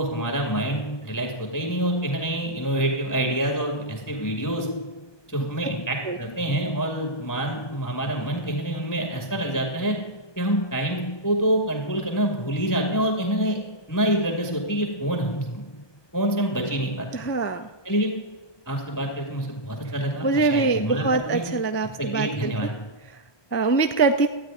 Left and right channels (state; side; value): late; right; 1.2 ms